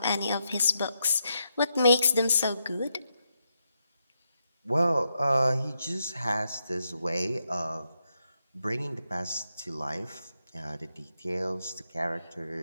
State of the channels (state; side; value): inverted; both; correlation -0.82